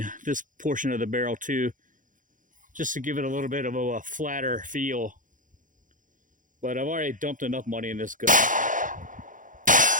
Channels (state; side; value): late; left; 0.38 ms